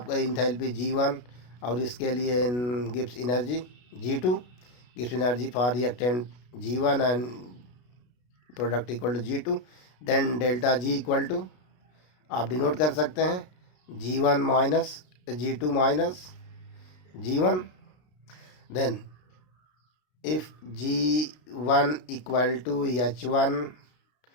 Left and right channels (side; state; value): right; late; 33 ms